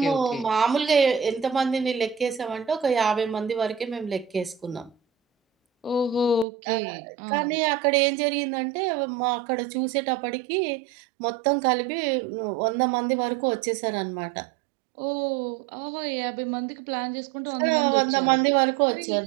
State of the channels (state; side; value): drops out; left; at 6.5 s